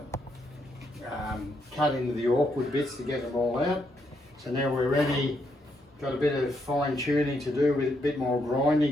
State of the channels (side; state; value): both; normal; correlation 0.77